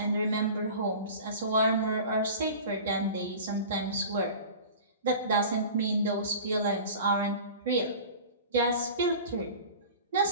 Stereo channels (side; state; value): both; inverted; correlation -0.38